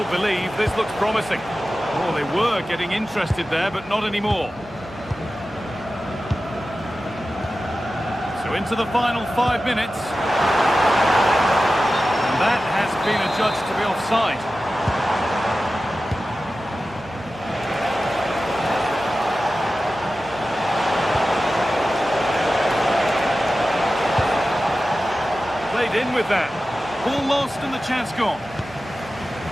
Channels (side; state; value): right; noise; hum, 20 dB below the sound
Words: believe this looks promising. Oh, they were getting interested there, but not anymore. So into the final 5 minutes. And that has been adjudged to be offside. In with that. Ball lost and the chance gone.